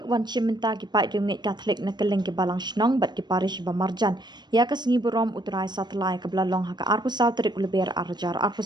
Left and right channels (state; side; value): late; left; 0.21 ms